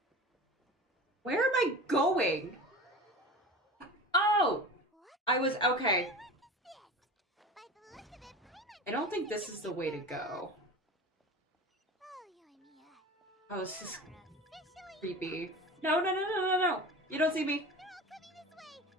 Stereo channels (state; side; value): normal; both; correlation 0.33